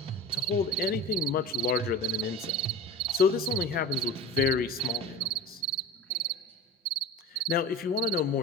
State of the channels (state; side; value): normal; both; correlation 0.34